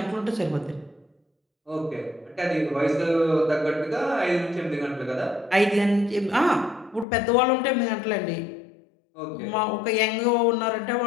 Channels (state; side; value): drops out; right; at 7.1 s